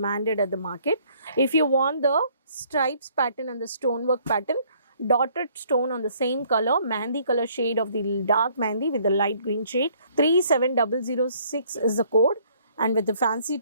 at the market. If you want the stripes pattern and the stonework pattern, dotted stone on the same color, mehndi color shade of the dark mehndi with the light green shade, 37006 is the code, and with the fancy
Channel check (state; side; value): inverted; both; correlation -0.62